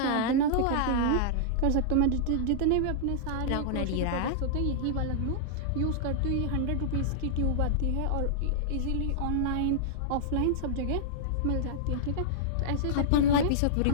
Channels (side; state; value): both; different; correlation -0.02